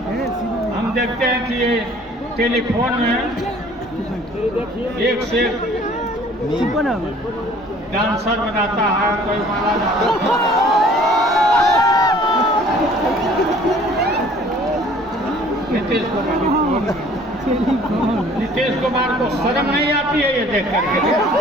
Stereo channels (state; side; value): normal; both; correlation 0.53